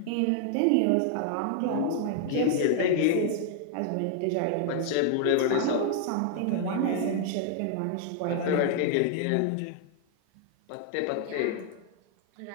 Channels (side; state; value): both; different; correlation 0.00